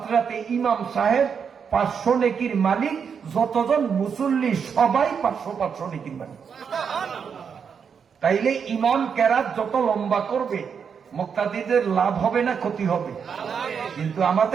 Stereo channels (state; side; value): quieter; left; 6.7 dB